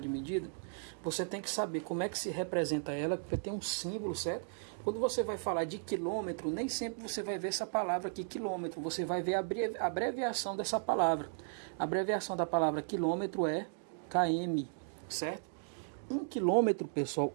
de medida, você tem que saber como é que se representa ela, porque tem um símbolo, certo? Quando você vai falar de quilômetro, nem sempre você vai ver essa palavra aqui, quilômetro, você vai ver a abreviação dessa palavra. A abreviação da palavra quilômetro é km, certo? 1 quilômetro, pessoal,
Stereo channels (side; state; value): left; silent; digital silence